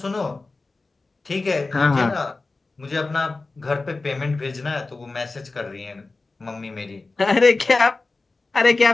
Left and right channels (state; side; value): quieter; right; 3.6 dB